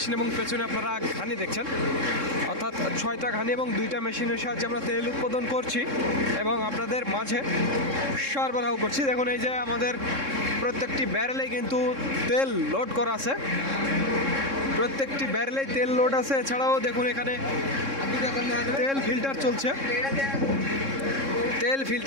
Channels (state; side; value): late; left; 3.7 ms